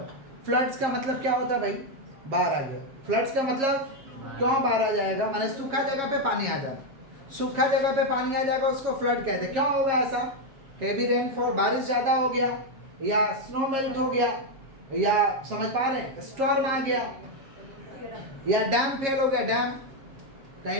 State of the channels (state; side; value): late; left; 7.4 ms